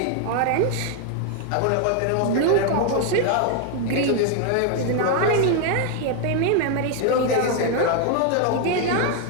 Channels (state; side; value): different; both; correlation 0.00